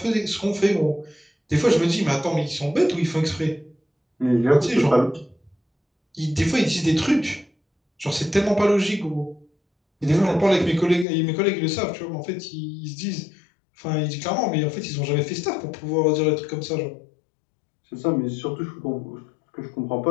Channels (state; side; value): drops out; right; at 11.1 s